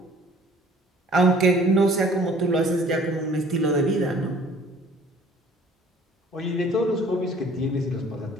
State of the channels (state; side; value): normal; both; correlation 0.53